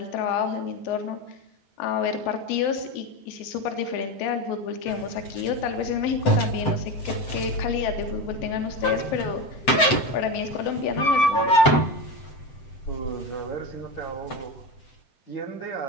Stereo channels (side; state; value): right; late; 7.8 ms